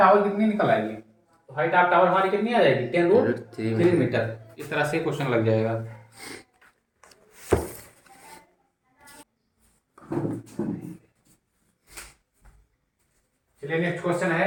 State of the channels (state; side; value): identical; both; correlation 1.00